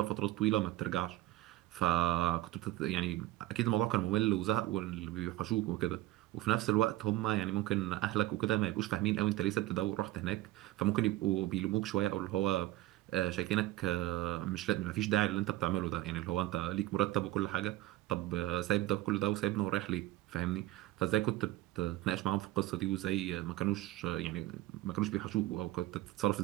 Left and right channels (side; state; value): left; quieter; 16.2 dB